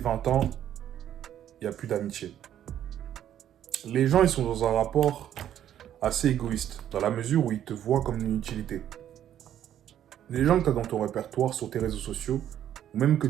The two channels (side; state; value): left; quieter; 10.8 dB